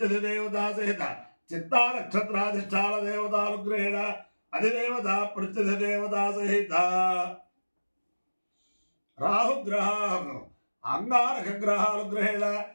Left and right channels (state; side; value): inverted; both; correlation -1.00